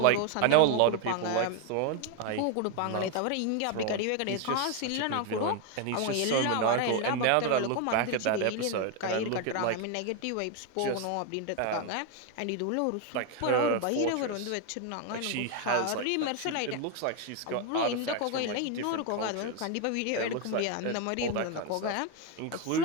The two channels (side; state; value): both; different; correlation 0.01